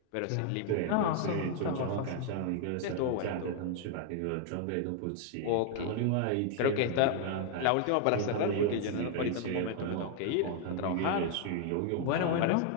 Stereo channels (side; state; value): both; different; correlation 0.00